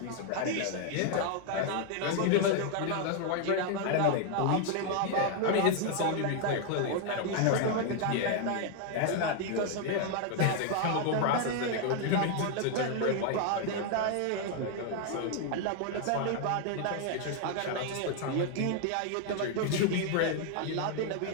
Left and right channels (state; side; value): different; both; correlation 0.00